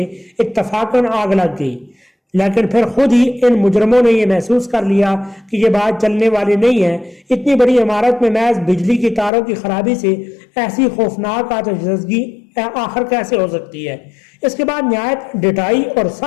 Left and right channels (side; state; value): right; drops out; at 9.3 s